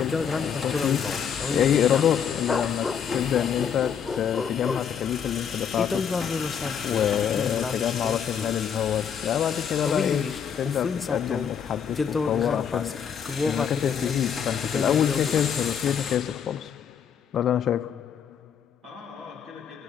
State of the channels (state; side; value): quieter; right; 7.8 dB